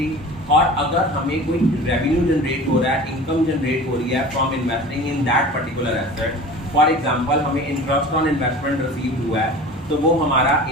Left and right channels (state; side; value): normal; both; correlation 0.39